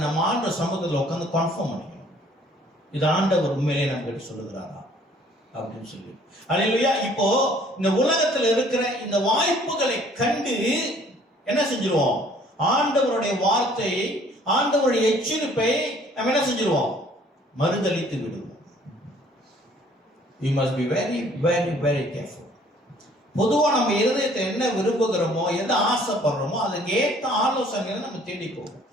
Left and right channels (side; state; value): both; normal; correlation 0.57